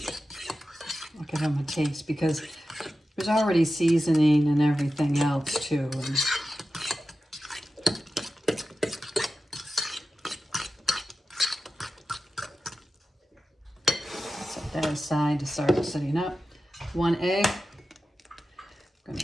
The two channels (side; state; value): both; normal; correlation 0.93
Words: I'll give them a taste because there's already seasoning and everything else too. That aside to start setting up. 1 egg. I'm going